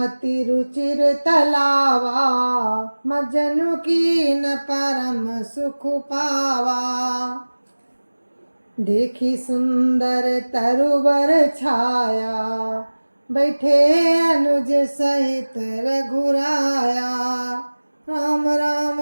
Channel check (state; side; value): inverted; both; correlation -1.00